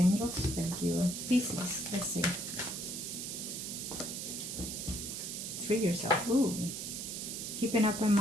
Thank you. Pisces. Let's see. Free yourself. Ooh. Keep an open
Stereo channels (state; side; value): noise; right; hiss, 5 dB below the sound